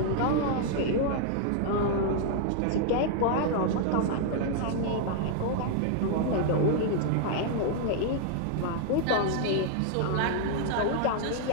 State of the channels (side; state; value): both; different; correlation 0.00